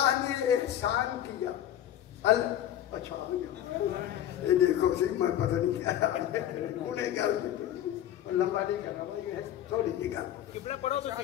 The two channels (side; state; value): right; quieter; 11.6 dB